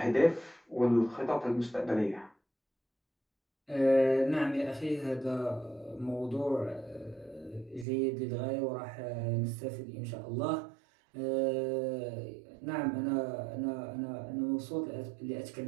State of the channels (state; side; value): drops out; left; at 7.9 s